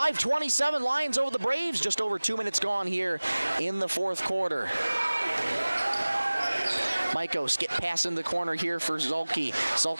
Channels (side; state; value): both; inverted; correlation -1.00